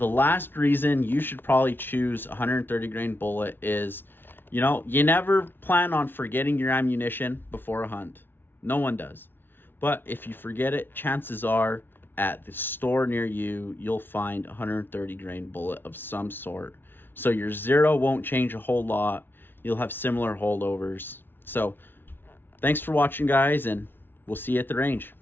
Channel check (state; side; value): late; right; 0.10 ms